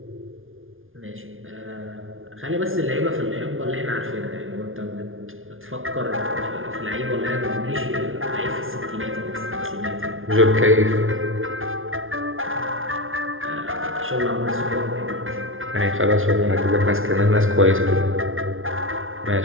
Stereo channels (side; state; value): left; late; 0.59 ms